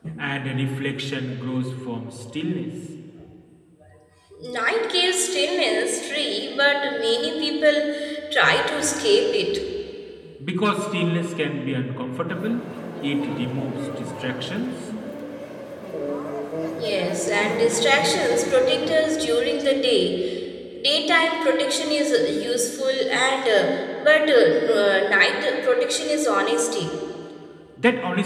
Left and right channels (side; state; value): both; identical; correlation 1.00